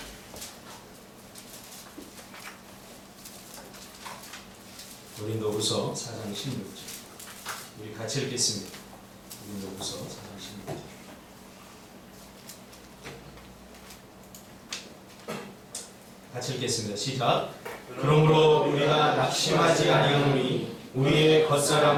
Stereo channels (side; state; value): both; identical; correlation 1.00